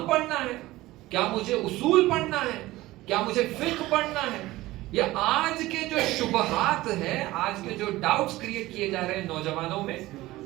پڑھنا ہے؟ کیا مجھے اصول پڑھنا ہے؟ کیا مجھے فقہ پڑھنا ہے؟ یا آج کے جو شبہات ہیں، آج کے جو ڈاؤٹس کریٹ کیے جا رہے ہیں نوجوانوں میں،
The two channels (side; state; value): left; quieter; 17.9 dB